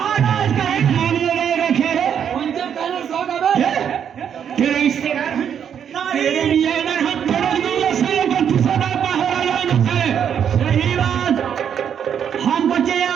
का एक मानवे नहीं रखे रे, तेरे रिश्तेदार हैं, तेरे लिए इधर हम तेरे लिए साले को तुझसे बाहर आया है। सही बात, हम बचे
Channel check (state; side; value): quieter; left; 8.4 dB